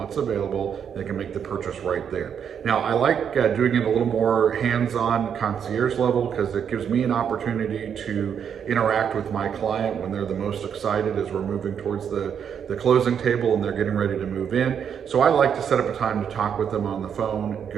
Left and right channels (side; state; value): left; quieter; 7.9 dB